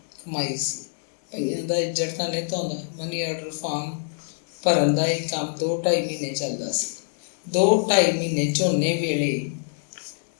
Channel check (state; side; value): silent; right; 59 dB below the other